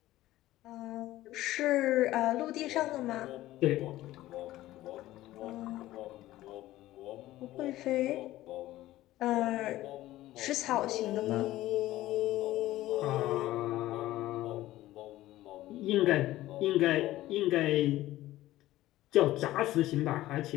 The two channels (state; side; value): quieter; right; 15.7 dB